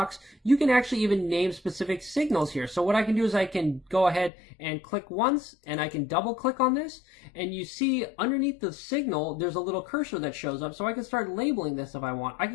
You can actually even name specific signals here. So what I can do is I can go ahead and click once, and I can double click on this. And you see underneath the signal, there's a little cursor that shows up. So I can start labeling this if I want. I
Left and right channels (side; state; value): right; drops out; at 4.3 s